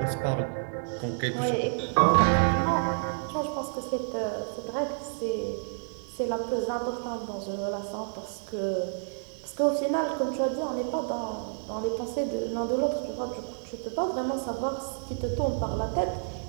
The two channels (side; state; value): left; silent; digital silence